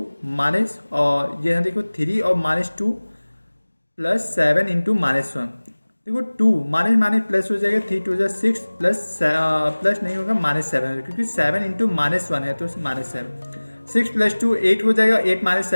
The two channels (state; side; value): inverted; both; correlation -1.00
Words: माइनस, और ये देखो 3 और माइनस 2 प्लस 7 इंटू माइनस 1। देखो 2 माइनस माइनस प्लस हो जाएगा, 3 2 6 प्लस नहीं होगा, माइनस 7, क्योंकि 7 इंटू माइनस 1 है तो माइनस 7। 6 प्लस 2 8 हो जाएगा, 8 माइनस